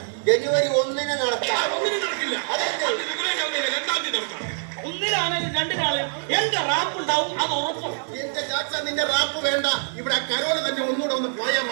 ജനുവരി 1-ന് നടത്താം. ഒന്നിനും നടക്കില്ല. രണ്ടാം തീയതി നടക്കാം. ഒന്നിലാണെങ്കിലും രണ്ടിനാളും എന്റെ റാപ്പ് ഉണ്ടാവും, അത് ഉറപ്പും. എന്റെ ചാച്ച, നിന്റെ റാപ്പ് വേണ്ട. ഇവിടെ കരോള് തന്നെ ഒന്നുകൂടെ ഒന്ന് പോയാൽ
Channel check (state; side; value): silent; left; digital silence